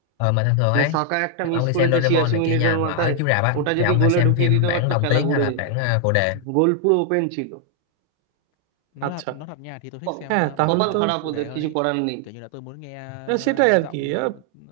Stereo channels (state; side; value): different; both; correlation 0.00